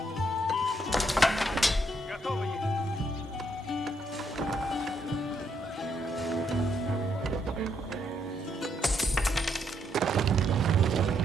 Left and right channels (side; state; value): both; normal; correlation 0.75